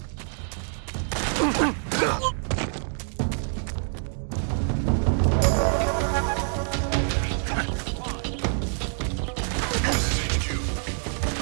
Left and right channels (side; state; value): left; silent; 61 dB below the other